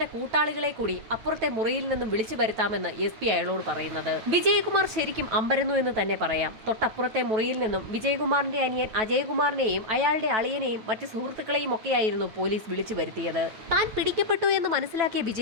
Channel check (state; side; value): late; left; 9.2 ms